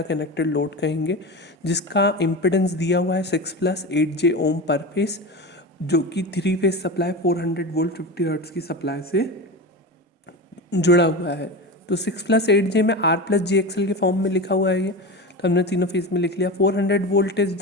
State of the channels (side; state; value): both; normal; correlation 0.25